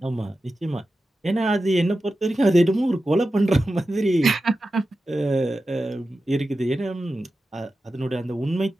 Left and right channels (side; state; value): both; normal; correlation 0.92